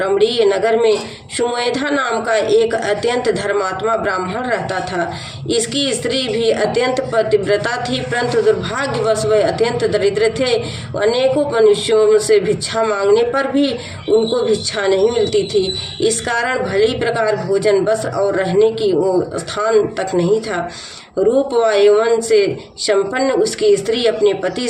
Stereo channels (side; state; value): both; identical; correlation 1.00